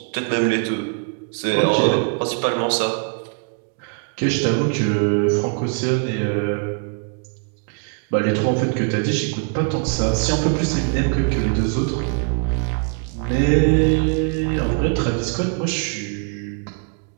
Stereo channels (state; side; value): quieter; left; 39.6 dB